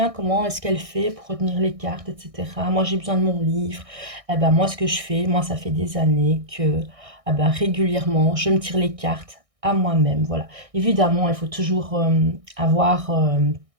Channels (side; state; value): left; late; 1.6 ms